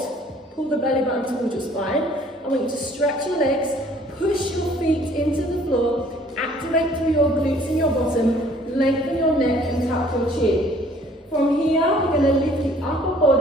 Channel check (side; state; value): both; normal; correlation 0.56